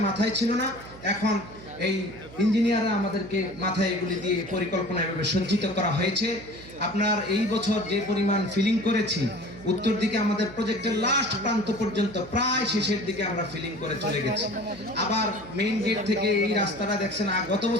মাথায় ছিল না, এখন এই ইঞ্জিনিয়াররা আমাদেরকে মাথায় এগুলি দিয়ে পরিকল্পনা এভাবে সজ্জিত করা হয়েছে। আপনার এই বছর যে পরিমাণ ফিলিং করেছি, উত্তর দিকে আমাদের প্রজেক্টের লাস্ট প্রান্ত পর্যন্ত প্রায় শেষের দিকে আমরা ফিলিং করে চলে গেছি। আবার মেইন গেট থেকে এই রাস্তাটা দেখছেন, গত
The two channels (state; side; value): noise; right; hum, 18 dB below the sound